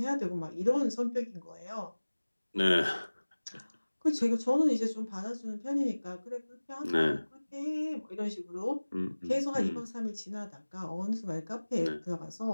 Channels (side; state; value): both; inverted; correlation -1.00